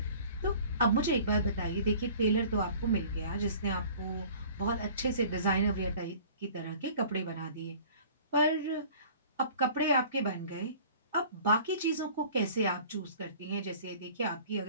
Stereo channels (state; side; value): inverted; both; correlation -0.48